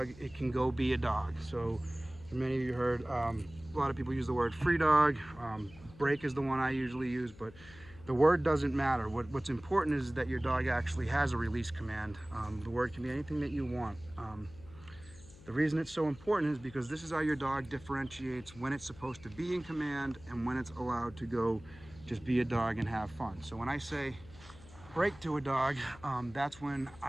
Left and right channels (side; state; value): left; noise; hum, 20 dB below the sound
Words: it can go be a dog. So, for many of you heard, a lot of people use the word free dog. Break is the one I usually use, but the word doesn't matter. What's important is that your dog actually has a release command. The word can be anything that you want. The reason it's so important is because this is how your dog differentiates when it's supposed to be in command and when it's allowed to go just be a dog and have fun. So when I say break to a dog, that's when